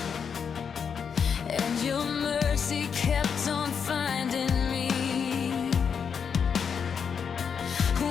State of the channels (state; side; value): quieter; right; 6.8 dB